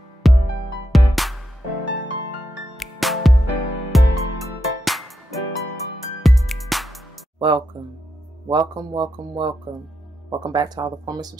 Welcome back to all the former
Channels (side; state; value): both; normal; correlation 0.84